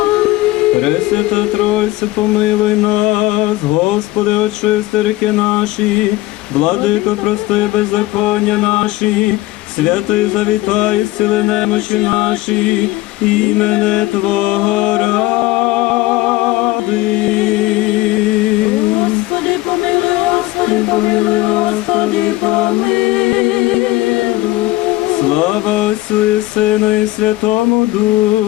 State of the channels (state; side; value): quieter; right; 18.5 dB